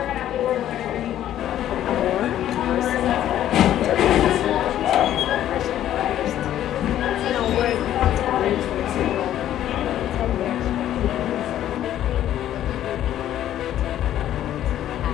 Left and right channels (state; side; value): quieter; right; 11.9 dB